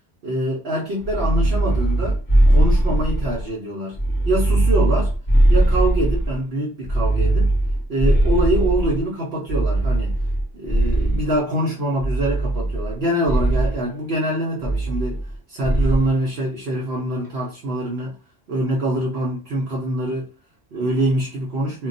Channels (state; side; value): normal; both; correlation 0.71